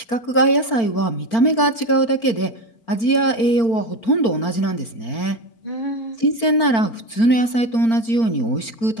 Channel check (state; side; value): late; right; 4.4 ms